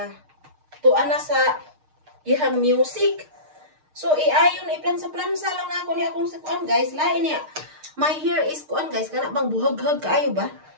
tuan na sa ihang music. So, iayon iplansa-plansa lang na ako ni akong kuan guys. Lain niya. My hair is kuan guys, kana bang buhag-hag kaayo ba?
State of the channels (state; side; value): late; left; 6.5 ms